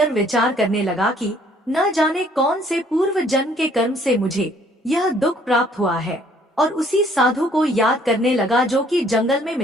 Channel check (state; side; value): normal; both; correlation 0.61